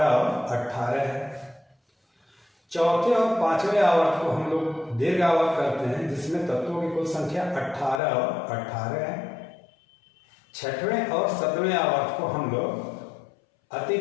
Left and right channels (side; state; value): right; drops out; at 8.0 s